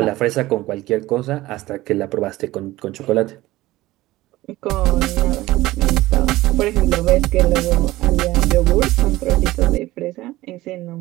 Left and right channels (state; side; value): quieter; left; 17.6 dB